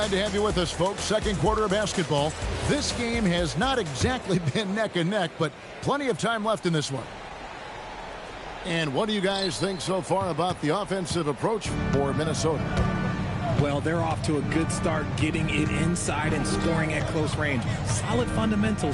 to have you with us, folks. Second quarter of basketball. This game has not exactly been neck and neck, but plenty of time left in this one. And what do you guys think so far about the offensive approach for Minnesota? Well, they're off to a good start, getting it inside and scoring at close range. Solid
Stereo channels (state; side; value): identical; both; correlation 1.00